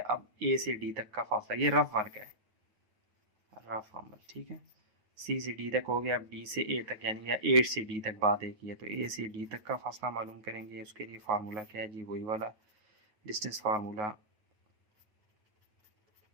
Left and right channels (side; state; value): left; late; 9.5 ms